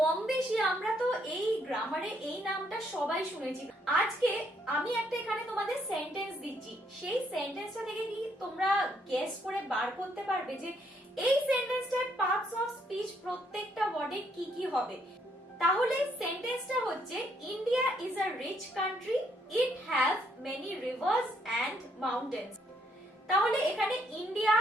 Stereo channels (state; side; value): normal; both; correlation 0.71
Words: বেশি আমরা তো এই গ্রামারে এই নামটা সবাই শুনেছি। আজকে আমি একটা এখানে তোমাদের সেন্টেন্স দিচ্ছি, সেই সেন্টেন্সটা থেকে কি তোমরা গেস করে বার করতে পারবে যে এই সেন্টেন্সটার পার্টস অফ স্পিচ প্রত্যেকটা ওয়ার্ডে কি কি হবে। তাহলে সেন্টেন্সটা হচ্ছে India is a rich country, it have many rivers and mountains. তাহলে এখানে ইন্ডিয়া